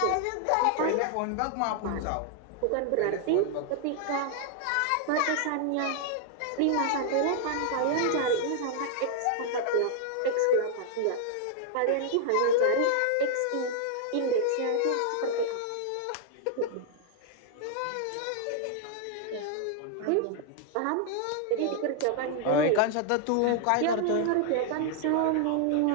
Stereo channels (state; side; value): different; both; correlation 0.00